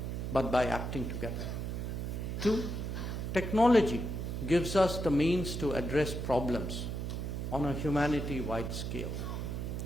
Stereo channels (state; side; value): noise; right; hum, 3 dB below the sound